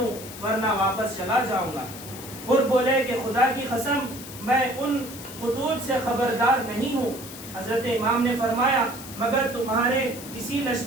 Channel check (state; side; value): noise; left; hiss, 13 dB below the sound